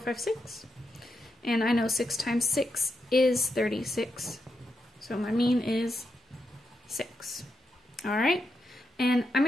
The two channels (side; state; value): both; normal; correlation 0.84